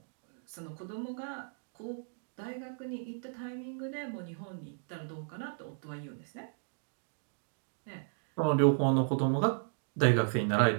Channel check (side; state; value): left; silent; digital silence